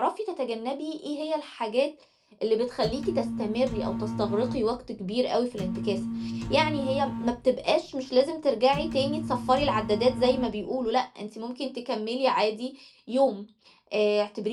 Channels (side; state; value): both; identical; correlation 1.00